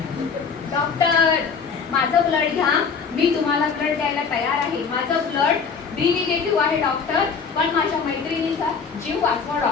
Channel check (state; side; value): quieter; right; 5.6 dB